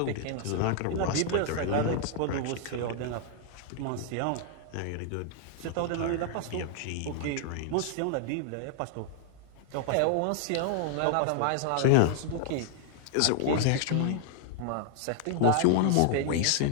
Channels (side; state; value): both; different; correlation 0.00